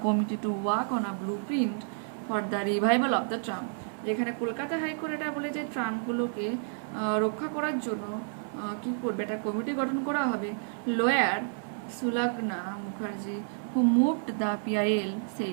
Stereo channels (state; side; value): silent; left; 58 dB below the other